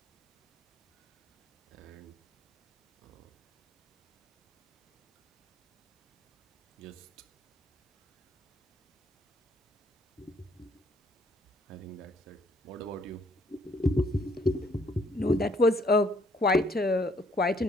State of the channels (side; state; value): both; normal; correlation 0.66